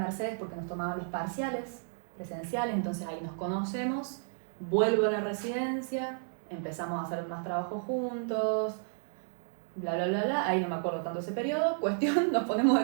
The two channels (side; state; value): left; silent; digital silence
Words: porque nos tomaban los parciales presenciales, entonces ahí nos conocemos. Vuelvo a la residencia, empezamos a hacer más trabajo juntos, bla, bla, bla, bla. Ahí no me acuerdo tanto ese periodo. Cuestión, nos ponemos